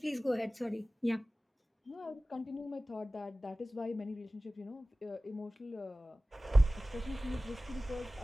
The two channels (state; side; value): normal; both; correlation 0.97